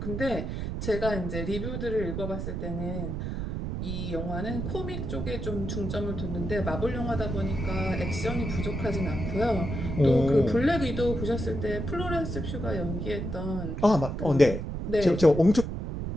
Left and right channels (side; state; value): right; noise; rumble, 4 dB below the sound